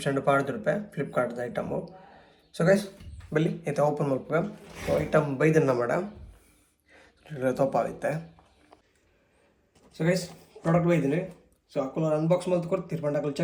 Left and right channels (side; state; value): both; identical; correlation 1.00